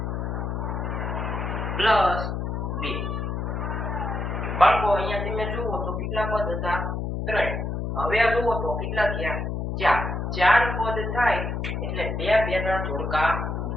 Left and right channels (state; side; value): noise; left; hum, 2 dB below the sound